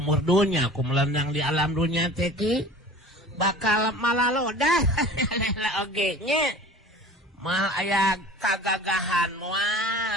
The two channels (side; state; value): both; normal; correlation 0.42